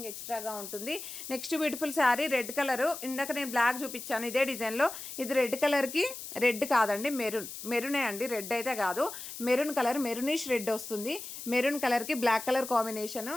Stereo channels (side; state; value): left; noise; hiss, 10 dB below the sound